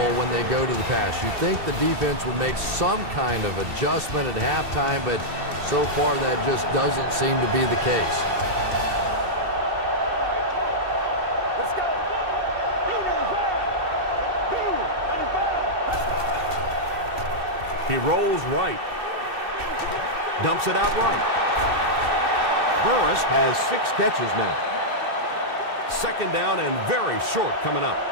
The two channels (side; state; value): left; late; 2.8 ms